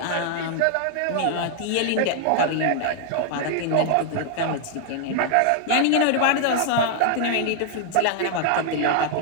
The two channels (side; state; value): both; different; correlation 0.00